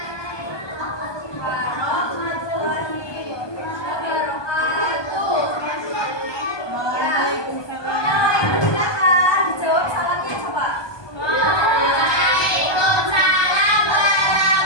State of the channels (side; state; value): right; late; 1.2 ms